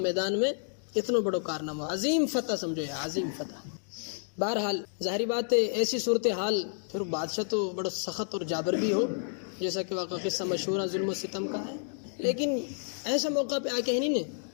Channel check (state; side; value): silent; right; digital silence